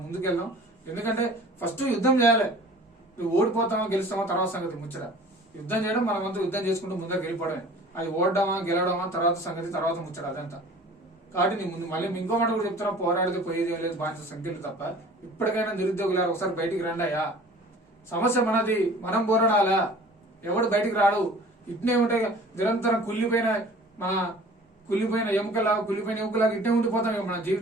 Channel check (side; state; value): both; normal; correlation 0.46